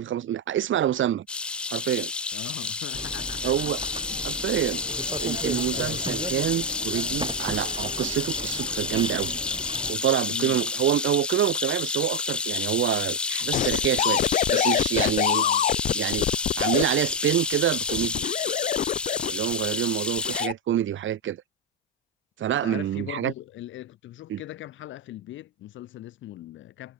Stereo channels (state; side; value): normal; both; correlation 0.03